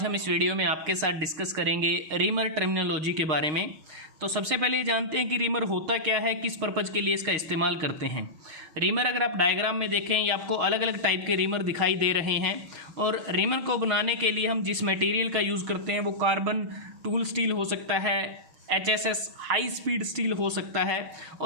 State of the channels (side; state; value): left; late; 6.4 ms